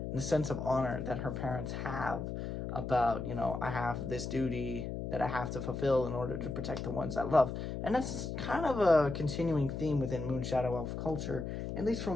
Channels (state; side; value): noise; left; hum, 5 dB below the sound